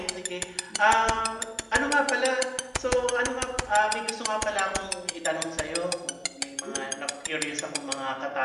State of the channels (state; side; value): identical; both; correlation 1.00